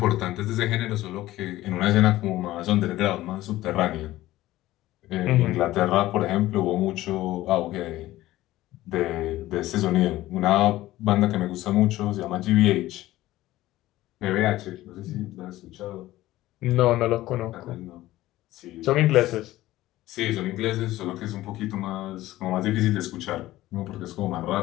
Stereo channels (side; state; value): right; quieter; 16.1 dB